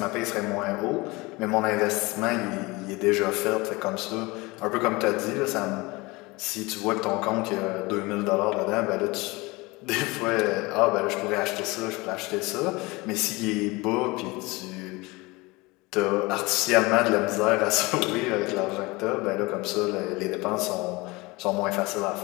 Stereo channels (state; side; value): quieter; right; 23.5 dB